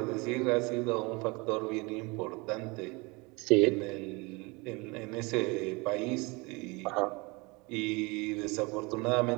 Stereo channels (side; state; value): left; quieter; 26.6 dB